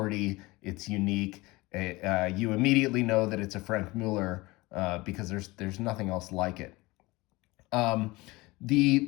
It's unique. You immediately know that it's a Franck Muller because there's nothing else like it.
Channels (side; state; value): right; quieter; 21.9 dB